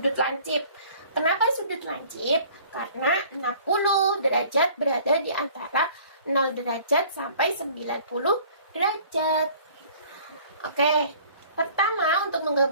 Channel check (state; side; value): inverted; both; correlation -0.52